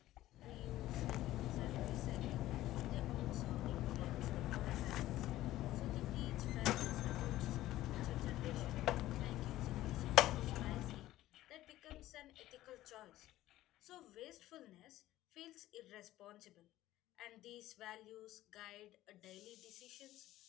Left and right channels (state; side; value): quieter; right; 15.1 dB